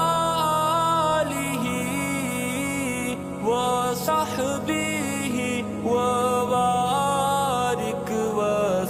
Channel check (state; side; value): identical; both; correlation 1.00